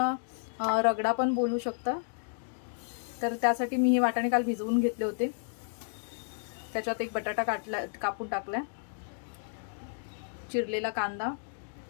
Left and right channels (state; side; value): silent; right; digital silence